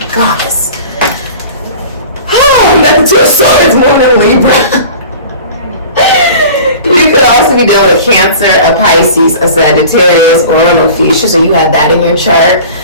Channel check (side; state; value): both; inverted; correlation -0.41